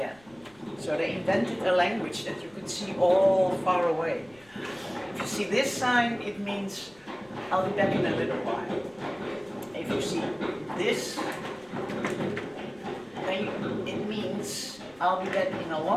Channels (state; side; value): noise; left; rumble, 29 dB below the sound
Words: So they invented a language that you could see all far away. If you see this sign, it means I'll be back in a little while. If you see this, then it means I'll be back in a